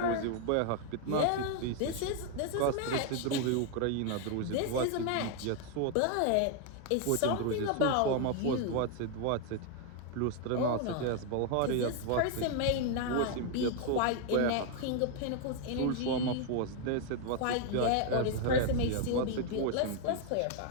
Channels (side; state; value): both; different; correlation 0.00